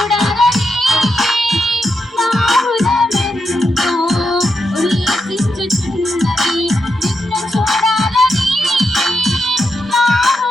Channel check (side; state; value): both; normal; correlation 0.84